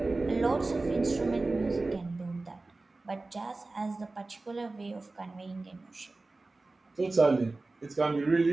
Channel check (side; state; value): left; quieter; 3.3 dB